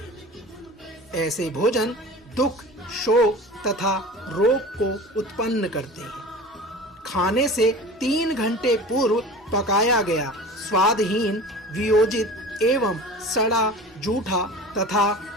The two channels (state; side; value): normal; both; correlation 0.37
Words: ऐसे भोजन दुख, शोक तथा रोग को उत्पन्न करते हैं। खाने से 3 घंटे पूर्व पकाया गया, स्वादहीन, वियोजित एवं सड़ा, जूठा तथा